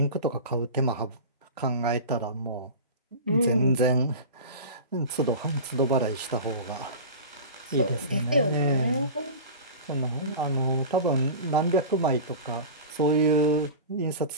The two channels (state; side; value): inverted; both; correlation -0.31